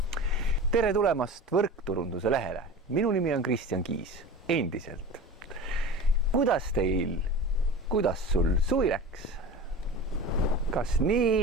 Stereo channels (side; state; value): both; normal; correlation 0.34